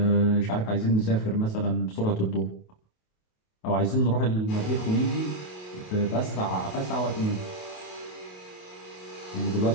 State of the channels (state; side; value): late; right; 28 ms